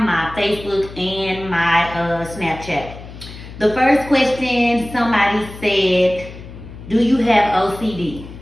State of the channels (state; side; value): noise; left; hum, 15 dB below the sound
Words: my Facebook, and my Snapchat. The first question, somebody said, do you have OCD?